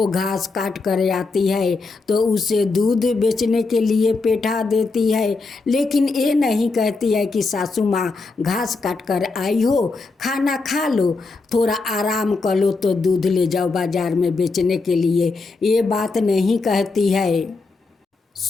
घास काट कर आती है तो उसे दूध बेचने के लिए बैठा देती है, लेकिन ये नहीं कहती है कि सासू माँ घास काट कर आई हो, खाना खा लो, थोड़ा आराम कर लो तो दूध ले जाओ बाजार में बेचने के लिए, ये बात नहीं कहती है।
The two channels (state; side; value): quieter; right; 3.9 dB